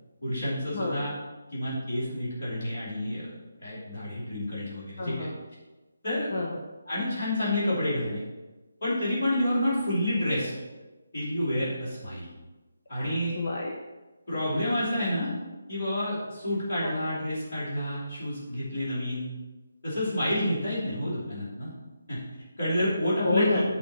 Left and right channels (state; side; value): inverted; both; correlation -0.82